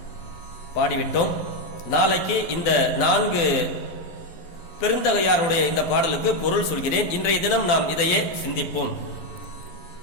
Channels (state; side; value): late; right; 12 ms